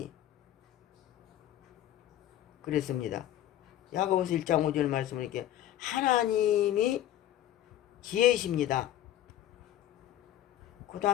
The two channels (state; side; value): quieter; right; 12.5 dB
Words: 그랬습니다. 야고보서 1장 5절 말씀을 이렇게 하나님이 지혜이십니다. 그